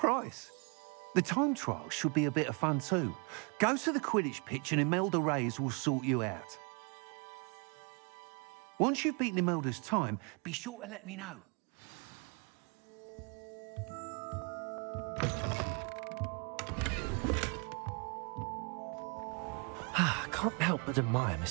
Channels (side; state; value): left; quieter; 34.0 dB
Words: The time trial should be a bit of fun too. Go to the Quidditch pitch and Imelda Reyes will sort you out. Once you've beaten Imelda's time, be sure to let me know. Can't help but admire